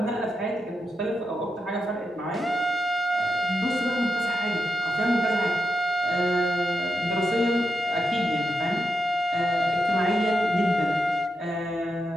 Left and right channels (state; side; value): normal; both; correlation 0.85